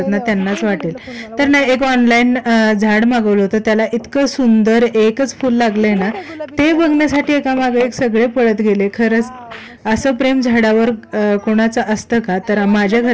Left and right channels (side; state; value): both; identical; correlation 1.00